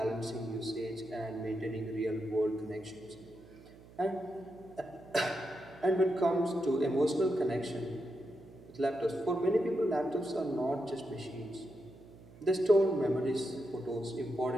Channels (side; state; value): right; noise; hum, 21 dB below the sound